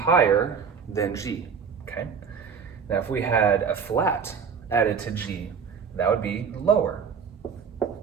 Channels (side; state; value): left; quieter; 6.3 dB